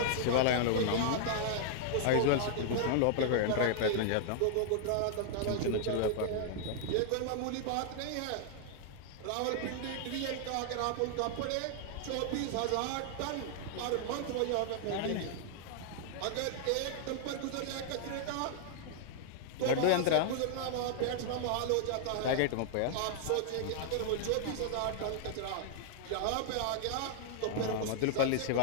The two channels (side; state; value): both; different; correlation 0.00